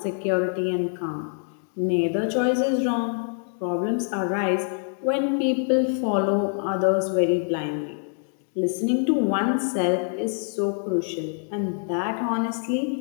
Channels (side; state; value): right; silent; 57 dB below the other